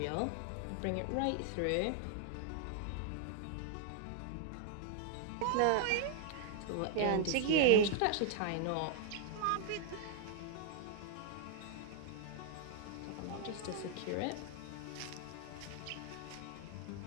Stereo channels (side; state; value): both; different; correlation -0.01